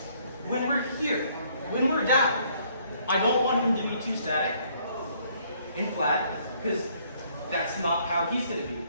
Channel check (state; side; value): inverted; both; correlation -0.65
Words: When we're here, when we're down, I don't want him to be too static and flat, because that's not how he's going to be.